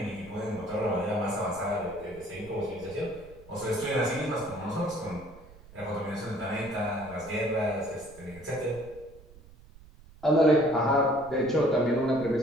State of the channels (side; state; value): right; noise; rumble, 21 dB below the sound